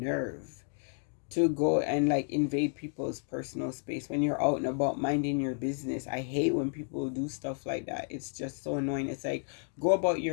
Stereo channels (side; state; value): right; silent; 57 dB below the other